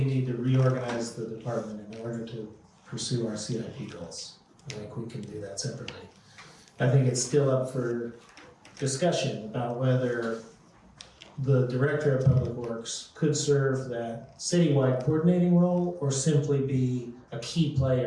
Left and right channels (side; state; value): both; identical; correlation 1.00